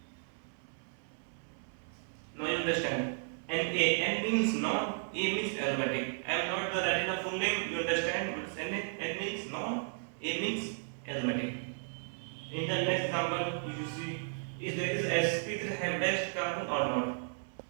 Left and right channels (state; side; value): silent; left; 55 dB below the other